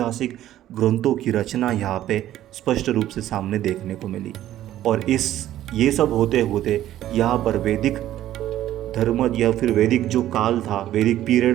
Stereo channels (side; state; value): left; quieter; 13.0 dB